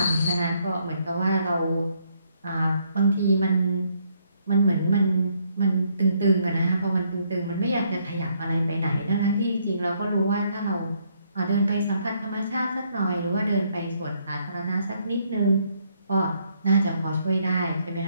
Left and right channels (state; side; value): inverted; both; correlation -0.71